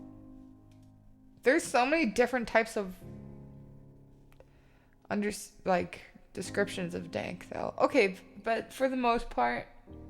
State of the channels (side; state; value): both; identical; correlation 1.00